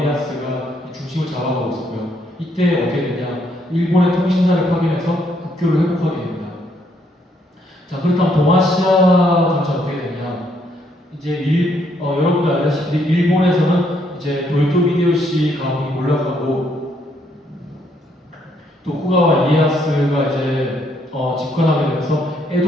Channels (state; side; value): normal; both; correlation 0.71